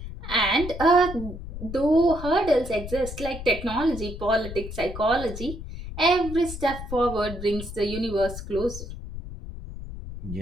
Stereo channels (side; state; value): left; noise; rumble, 10 dB below the sound